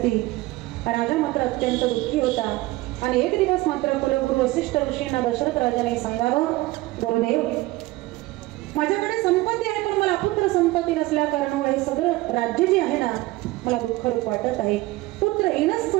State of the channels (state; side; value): quieter; left; 19.4 dB